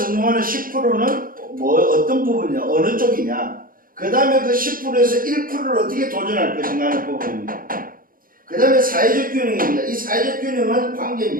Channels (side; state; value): left; late; 0.41 ms